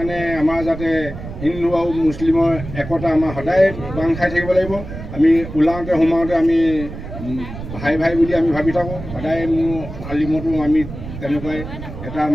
আমাৰ যাতে হিন্দু আৰু মুছলিমৰ একতা আমাৰ সদায় বান্ধ খাই থাকিব লাগিব। আমি ওলাওঁতে সোমাওঁতে আমি ভাই ভাই বুলি আমি ভাবি থাকোঁ। সদায় মোৰ আলিমতো আমি তেনেকুৱাই এটা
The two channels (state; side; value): noise; right; rumble, 10 dB below the sound